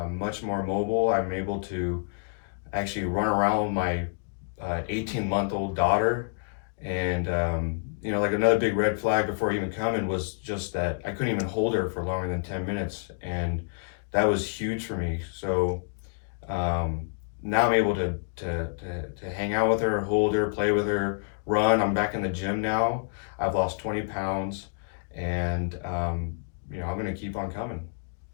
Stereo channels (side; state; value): right; silent; digital silence